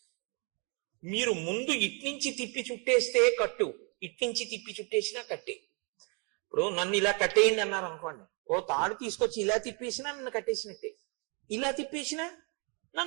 మీరు ముందు ఇట్నుంచి తిప్పి చుట్టేస్తే కట్టు, ఇట్నుంచి తిప్పి చుట్టేసినా కట్టే. ఇప్పుడు నన్ను ఇలా కట్టేయండి అన్నారు అనుకోండి, ఓ తాడు తీసుకొచ్చి ఇలా తిప్పేసినా నన్ను కట్టేసినట్టే, ఇలా తిప్పేసినా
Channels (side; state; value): left; quieter; 35.0 dB